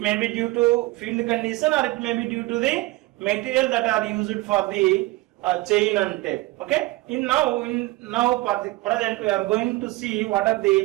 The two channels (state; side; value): quieter; left; 20.3 dB